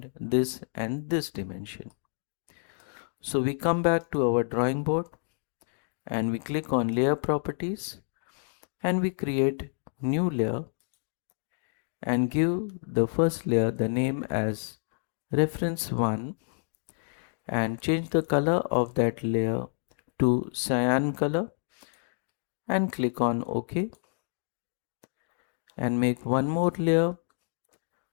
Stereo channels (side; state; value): right; silent; digital silence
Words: this and this dimension. So we come back to our drawing board and we click on Layer Properties and we create new layer and give the first layer the name as Reference 1 and change the color of that layer to cyan color and click on OK, and make one more layer